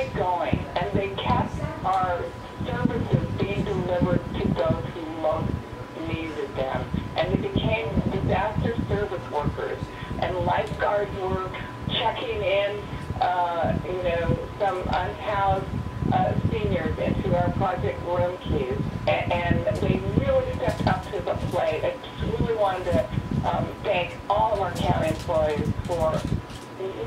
going, and they kept our services being delivered to those who most needed them. And they became disaster service workers, and lifeguards were checking in, some unhoused seniors into our project room keys, and they really stepped up to the plate. I just really wanted to thank all of our county employees for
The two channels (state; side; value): identical; both; correlation 1.00